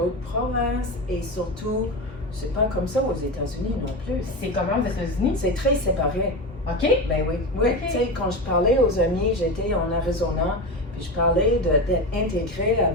provinces et surtout, c'est pas comme ça aux États-Unis non plus. C'est comment aux États-Unis? C'est très séparé. OK? Ben oui, oui. Ok. Tu sais, quand je parlais aux amis, j'étais en Arizona, puis je parlais d'être intégré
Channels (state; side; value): normal; both; correlation 0.21